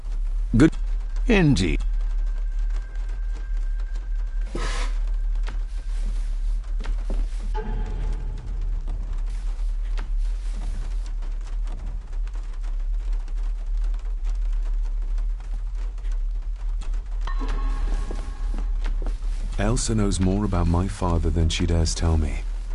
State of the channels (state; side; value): identical; both; correlation 1.00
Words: good. Indeed. Elsa knows more about my father than she dares tell me.